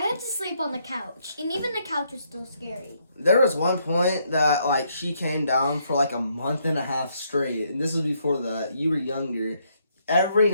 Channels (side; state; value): both; inverted; correlation -0.73